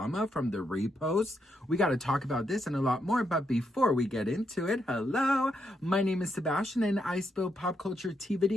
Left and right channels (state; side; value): normal; both; correlation 0.80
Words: from the reposts. We got to talk about this and a lot more, but before we get into it, hello, my name is Sebastian and I spill pop culture tea